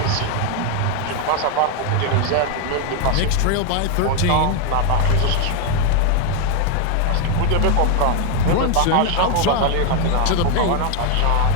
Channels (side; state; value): both; different; correlation 0.01